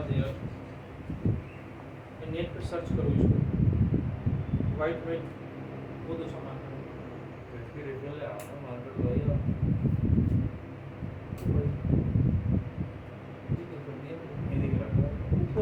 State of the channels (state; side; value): identical; both; correlation 1.00